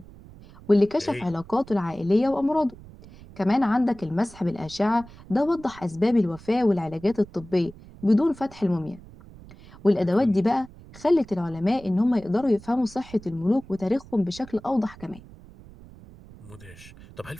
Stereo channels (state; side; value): noise; right; rumble, 20 dB below the sound